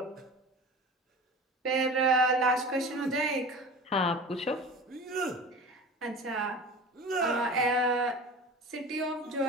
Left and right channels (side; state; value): both; normal; correlation 0.36